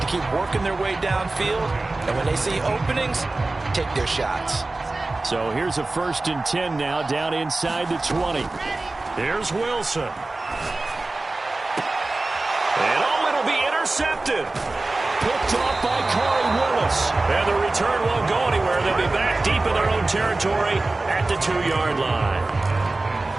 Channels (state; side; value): quieter; left; 3.1 dB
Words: keep working their way downfield. And when they see openings, take their shots. So here's a 1st and 10 now down inside the 20. Here's Wilson. And it'll be intercepted. Picked off by Corey Willis. And the return won't go anywhere. They'll be back deep in their own territory at the 2-yard line.